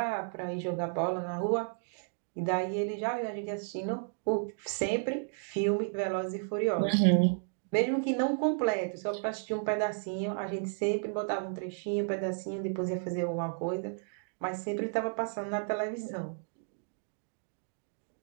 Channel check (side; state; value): left; silent; digital silence